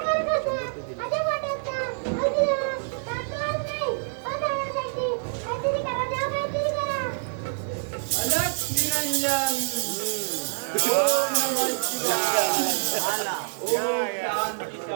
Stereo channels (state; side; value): silent; left; 61 dB below the other